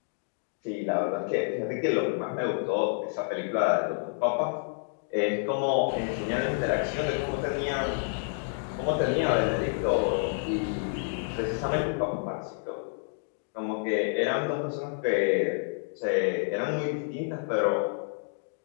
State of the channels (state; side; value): silent; right; digital silence